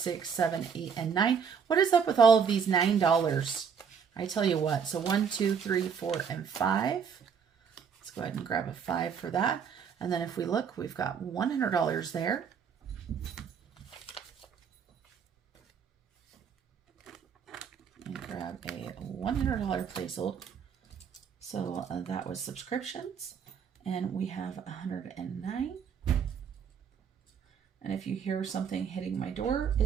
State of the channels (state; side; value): quieter; left; 6.8 dB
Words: 7, 8, and 9. What is up with all of these $9? I tell you what. So 1, 2, 3, 4, and 5. Let's go ahead and grab a 5 for that. And then if we look, we've got $100 there. And grab a $100 placeholder. So that was subscriptions. And we have 109. And if you hear something hitting my door,